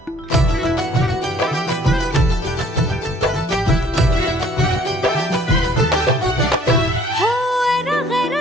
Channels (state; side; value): normal; both; correlation 0.58